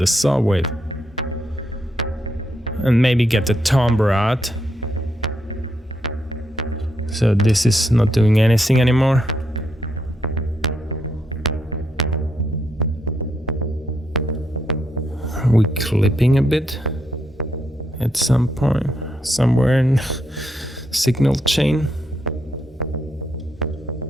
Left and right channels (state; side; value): normal; both; correlation 0.79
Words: saw wave and maybe get the timbre out. So this is not doing anything anymore. Are we clipping a bit at some point, somewhere in signal chain?